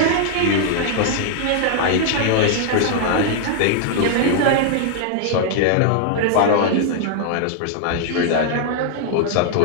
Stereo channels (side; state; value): both; different; correlation -0.01